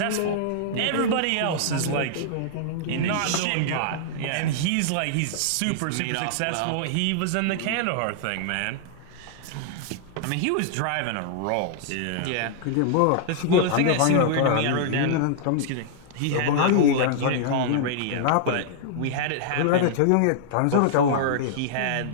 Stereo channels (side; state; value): both; different; correlation -0.01